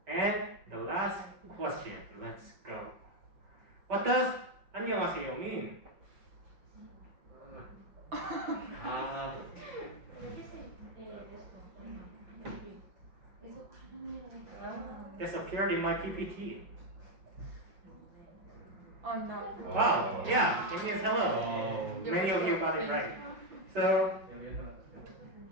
And the last question. Let's go. What does 안녕하세요 mean? This appeared in my PPT. Oh no. Wow, yeah, it means hello. Many of you got it right. So,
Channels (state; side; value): late; left; 5.1 ms